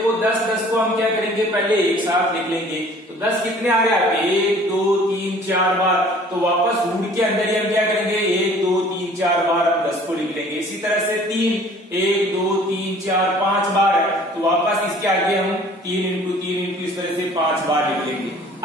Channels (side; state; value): both; normal; correlation 0.51